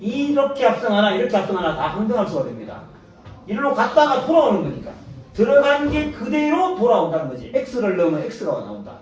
합성하나 이렇게 합성하나 다 항등함수가 됩니다. 이리로 갔다가 돌아오는 거니까 들어간 게 그대로 돌아온다는 거지. X를 넣으면 X가 나온다.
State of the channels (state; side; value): identical; both; correlation 1.00